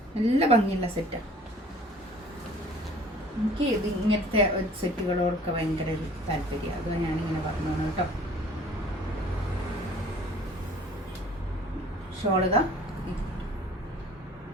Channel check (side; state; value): both; normal; correlation 0.51